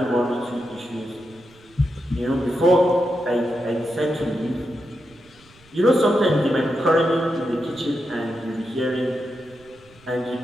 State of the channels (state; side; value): noise; right; rumble, 28 dB below the sound